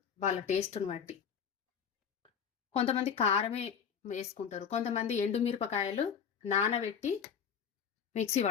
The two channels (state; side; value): quieter; right; 7.3 dB